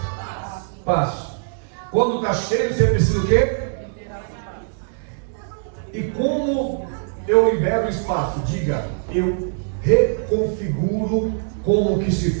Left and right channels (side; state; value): left; silent; digital silence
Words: Quando está cheio, você precisa o quê? E como eu libero o espaço? Diga, eu reconfiguro como que se